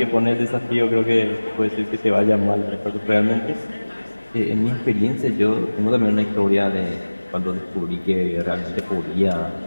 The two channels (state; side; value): inverted; both; correlation -1.00